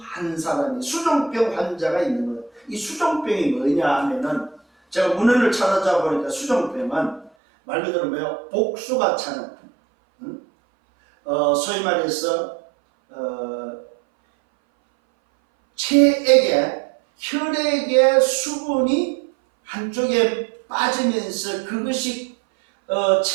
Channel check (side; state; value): left; drops out; at 7.3 s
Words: 사람이, 수종병 환자가 있는 거예요. 이 수종병이 뭐냐 하면은, 제가 문헌을 찾아보니까 보니까 수종병은 말 그대로 뭐예요? 복수가 차는, 소위 말해서 혈액의 수분이 한쪽에 빠지면서 그것이